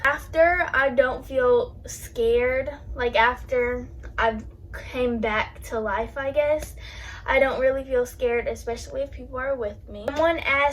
After, I don't feel scared. Like, after I've came back to life, I guess, I don't really feel scared, especially if people are with me. Someone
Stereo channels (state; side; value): identical; both; correlation 1.00